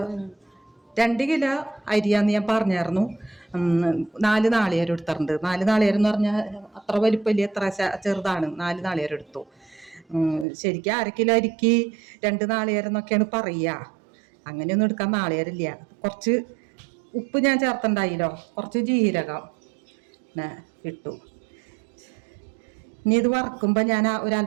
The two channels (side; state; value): left; drops out; at 10.5 s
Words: 2 കിലോ അരിയാന്ന് ഞാൻ പറഞ്ഞായിരുന്നു. 4 നാളികേരം എടുത്തിട്ടുണ്ട്. 4 നാളികേരം എന്ന് പറഞ്ഞാൽ അത്ര വലിപ്പമില്ല, എത്ര ചെറുതാണ്. 4 നാളികേരം എടുത്തു. ശരിക്കും 1/2 കിലോ അരിക്ക് 2 നാളികേരം എന്നൊക്കെയാണ് പറയുക. അങ്ങനെയൊന്നും എടുക്കാൻ നാളികേരമില്ല. കുറച്ച് ഉപ്പ് ഞാൻ ചേർത്തുണ്ടായില്ലോ, കുറച്ച് ജീരകം ഇട്ടു. ഇനി ഇത് വറക്കുമ്പോൾ ഞാൻ